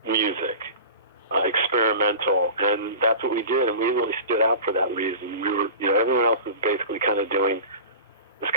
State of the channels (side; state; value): both; inverted; correlation -0.35